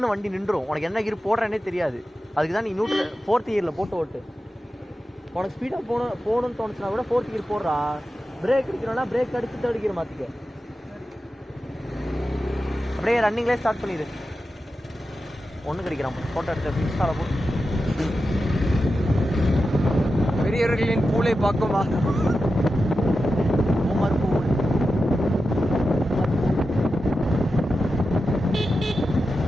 வண்டி நின்றுடும். உனக்கு என்ன கீர் போடுறேன்னே தெரியாது. அதுக்கு தான் நீ 4th கியரில் போட்டு ஓட்டு. உனக்கு ஸ்பீடாக போகணும்னு தோணுச்சுன்னா கூட 4th கியர் போடுறா. பிரேக் அடிக்கணும்னா பிரேக் அடித்து 3rd கியர் மாற்றிக்க. அப்படியே ரன்னிங்லேயே ஸ்டார்ட் பண்ணிடு. ஒன்று கிடைக்கிறான். ஃபோட்டோ எடுத்து இன்ஸ்டாவில் போட்டு. பெரியவர்களின் பூலை பார்க்குமா?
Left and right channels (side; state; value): both; normal; correlation 0.91